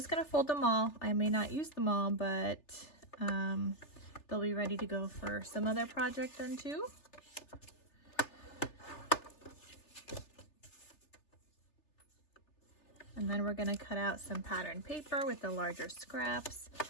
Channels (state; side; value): late; right; 3.3 ms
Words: gonna fold them all. I may not use them all, but they'll be ready to go for some other project then too. And then we're gonna cut out some pattern paper with the larger scraps